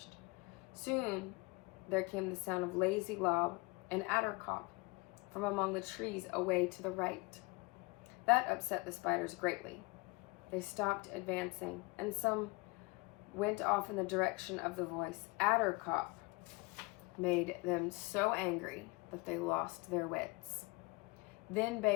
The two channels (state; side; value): quieter; right; 25.7 dB